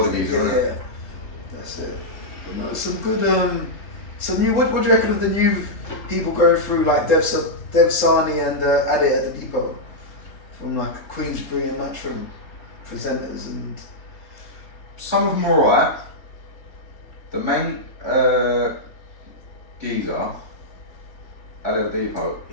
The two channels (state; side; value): late; right; 3.7 ms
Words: guys. Yeah, that's it. But no, some good some new. What do you reckon of the new people going through like Dev Sani and Ade at the Depot from like Queensbury and Matchroom presenters and some of them are alright. The main geezer at the Depot,